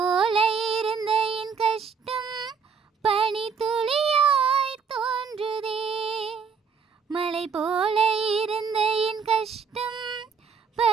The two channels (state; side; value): quieter; left; 6.0 dB